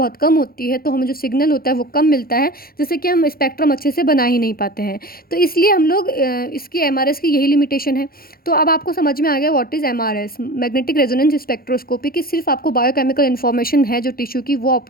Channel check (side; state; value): right; late; 0.43 ms